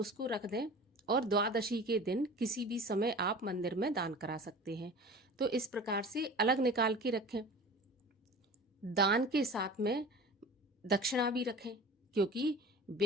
रख दें, और द्वादशी के दिन किसी भी समय आप मंदिर में दान करा सकते हैं। तो इस प्रकार से अलग निकाल के रखें। दान के साथ में दक्षिणा भी रखें, क्योंकि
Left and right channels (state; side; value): normal; both; correlation 0.38